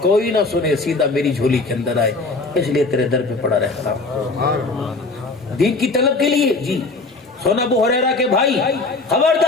کوئی نہ سنے, سیدھا میری جھولی کے اندر آئے, اس لیے تیرے در پہ پڑا رہتا دین کی طلب کے لیے. جی سونا ابو ہریرہ کے بھائی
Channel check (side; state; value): right; quieter; 3.5 dB